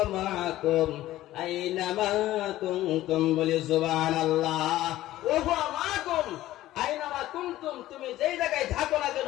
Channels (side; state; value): right; quieter; 15.1 dB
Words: মাআকুম আইনামা কুনতুম। বলে সুবহানাল্লাহ। ওয়া হুয়া মাআকুম আইনামা কুনতুম, তুমি যেই জায়গায় থাকো না